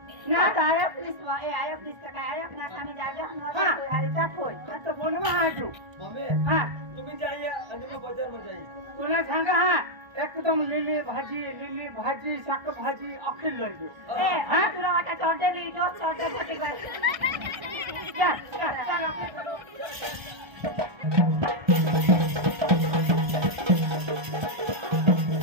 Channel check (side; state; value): left; late; 1.3 ms